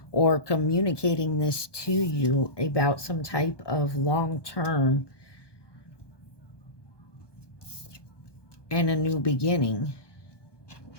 or communicating this to you about some type of long-term and a new beginning.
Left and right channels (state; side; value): late; right; 1.2 ms